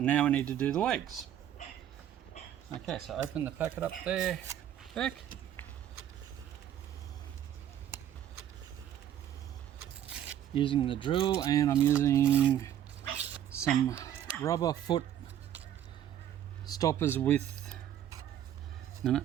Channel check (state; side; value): quieter; left; 10.7 dB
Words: now we need to do the legs. Okay, so open the packet up there, Beck. Using the drill, and I'm using some rubber foot stoppers with, no,